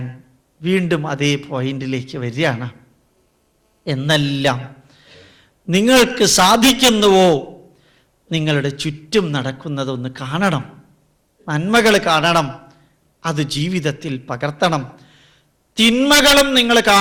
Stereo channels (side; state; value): both; identical; correlation 1.00